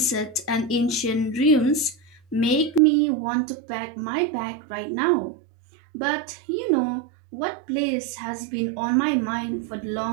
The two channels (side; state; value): left; drops out; at 2.8 s